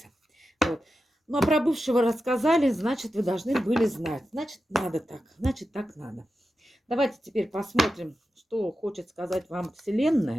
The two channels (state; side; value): normal; both; correlation 0.90